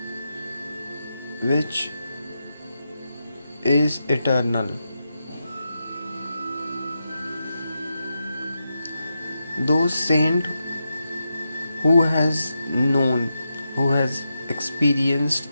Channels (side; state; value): both; inverted; correlation -0.87